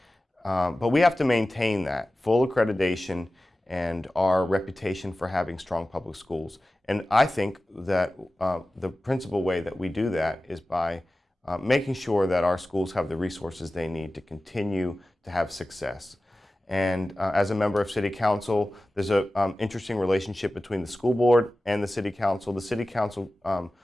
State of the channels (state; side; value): normal; both; correlation 0.96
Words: But we have to maintain that full accreditation and our reputation for having strong public schools. And I think that the principal way that we do that is by making sure that our schools have the resources they need to continue to have success. And as a member of City Council, there's an interesting relationship between the school board and the City Council. The City Council